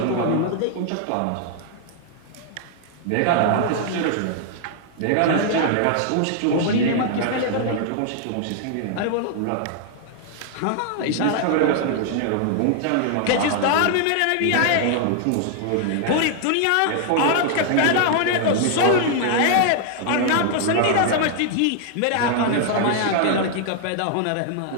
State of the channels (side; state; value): both; different; correlation 0.00